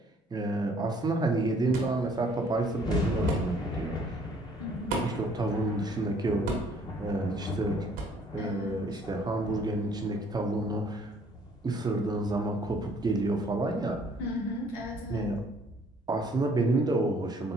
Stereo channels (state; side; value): normal; both; correlation 0.60